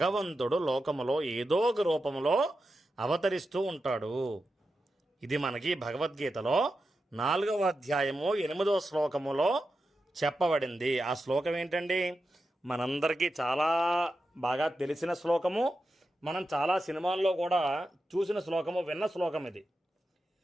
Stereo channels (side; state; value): both; normal; correlation 0.90